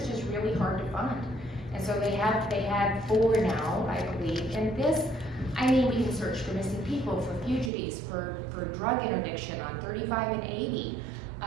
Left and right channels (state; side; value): drops out; left; at 7.7 s